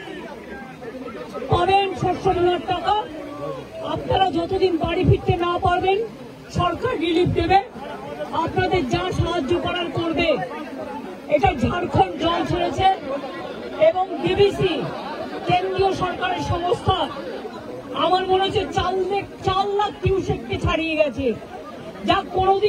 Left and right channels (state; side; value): identical; both; correlation 1.00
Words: শস্য বীমার টাকা। আপনারা যতদিন বাড়ি ফিরতে না পারবেন সরকার রিলিফ দেবে, আপনাদের যা সাহায্য করার করবে। এটা ঝাড়খণ্ড জল ছেড়েছে এবং ডিবিসি কেন্দ্রীয় সরকারের সংস্থা আমার মনে হচ্ছে 4 লাখ কিউসেককে ছাড়িয়ে গেছে, যা